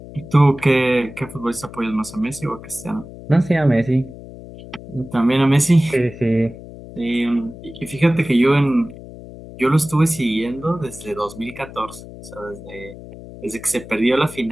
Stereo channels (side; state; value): left; noise; hum, 15 dB below the sound